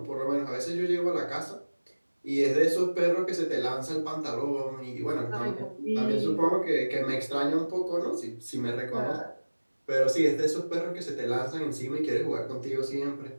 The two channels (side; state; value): both; inverted; correlation -1.00